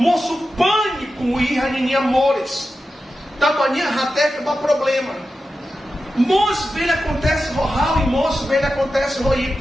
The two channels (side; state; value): both; normal; correlation 0.91